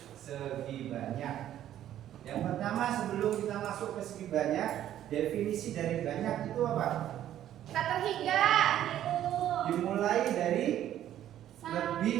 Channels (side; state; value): left; quieter; 11.7 dB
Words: segi banyak. Yang pertama, sebelum kita masuk ke segi banyak, definisi dari banyak itu apa? Tak terhingga. Dimulai dari